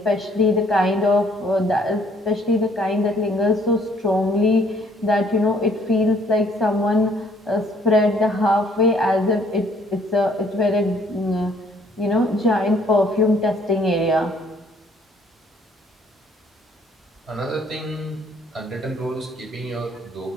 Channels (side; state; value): both; normal; correlation 0.62